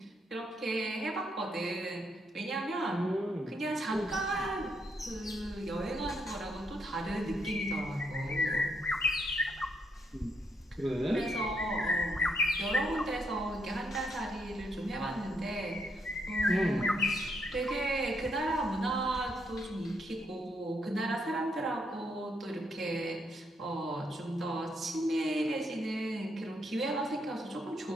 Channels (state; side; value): normal; both; correlation 0.76